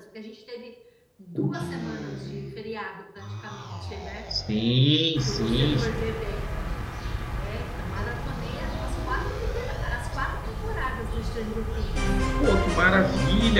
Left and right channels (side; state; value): both; identical; correlation 1.00